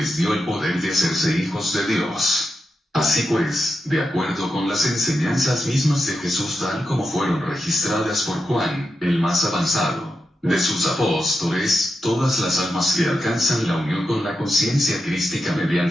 dio el poder de hacerse hijos de Dios. Así pues, de acuerdo con las enseñanzas mismas de Jesús tal como fueron registradas por Juan, el más avanzado de sus apóstoles, todas las almas que alcanzan la unión con la conciencia crística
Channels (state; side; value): normal; both; correlation 0.87